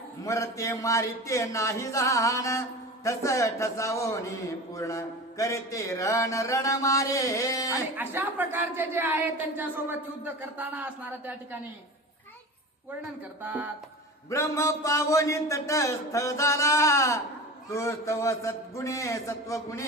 मरते मारिते नाही जाण ठस ठसावोनी पूर्ण करते रण रण मारे. आणि अशा प्रकारचे जे आहेत त्यांच्यासोबत युद्ध करताना असणारा त्या ठिकाणी वर्णन करतात. ब्रह्म पावनी तटस्थ झाला तो तव सद्गुणे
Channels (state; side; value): normal; both; correlation 0.31